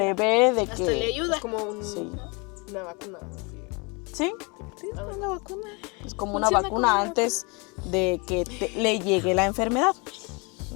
de Hasta que... le ayuda. es como Sí. una vacuna. Sí, Sí, es una vacuna. es como una Funciona vacuna como una antes de que le llegue la enfermedad.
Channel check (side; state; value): right; quieter; 30.2 dB